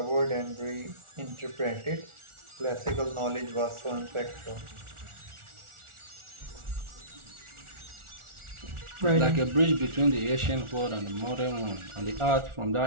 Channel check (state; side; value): late; left; 1.4 ms